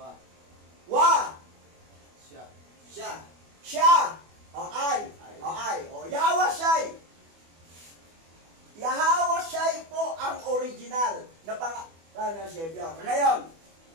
Wa. Siya. Ay. Yahawashai. Yahawashai po ang original na Savior. Ngayon,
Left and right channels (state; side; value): late; left; 24 ms